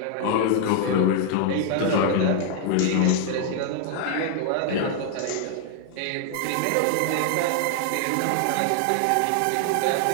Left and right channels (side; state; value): both; different; correlation 0.00